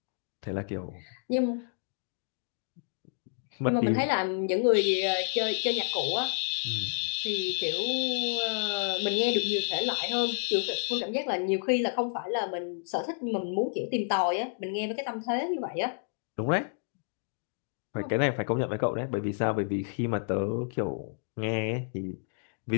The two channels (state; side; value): silent; right; digital silence